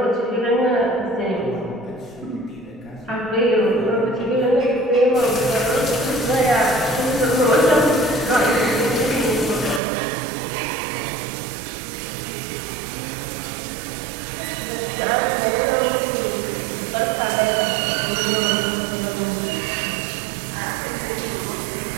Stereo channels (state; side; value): drops out; left; at 9.8 s